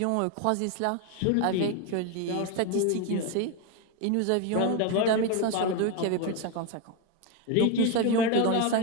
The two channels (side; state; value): both; different; correlation 0.02